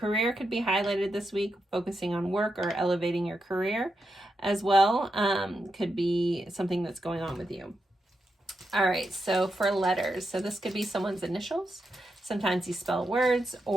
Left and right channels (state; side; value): normal; both; correlation 0.85